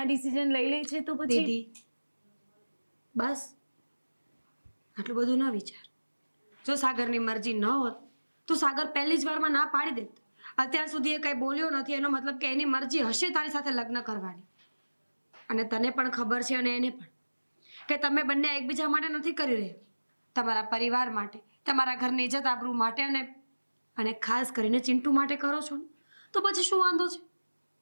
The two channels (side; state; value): both; inverted; correlation -1.00